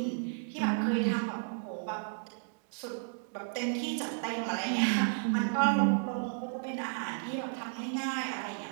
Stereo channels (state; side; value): silent; left; digital silence